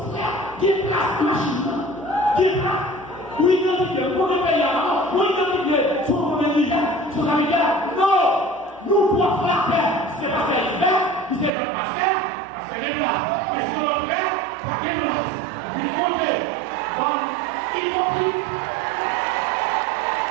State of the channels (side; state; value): left; drops out; at 11.5 s